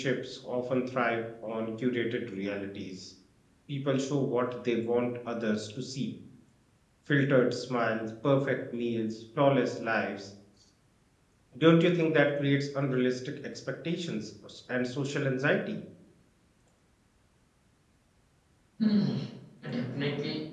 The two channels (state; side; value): identical; both; correlation 1.00